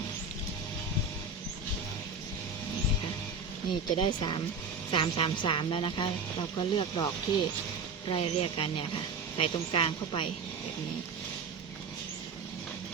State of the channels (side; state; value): left; quieter; 4.4 dB